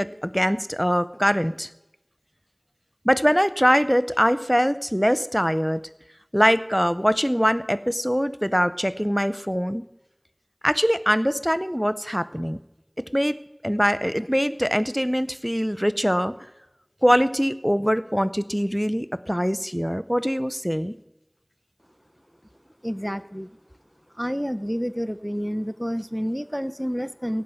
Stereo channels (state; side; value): identical; both; correlation 1.00